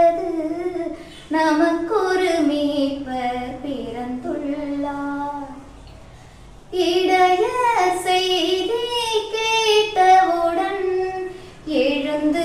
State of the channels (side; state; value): both; identical; correlation 1.00